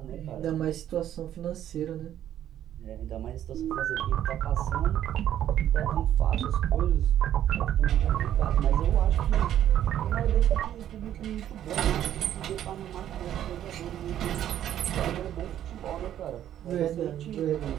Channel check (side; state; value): left; quieter; 11.2 dB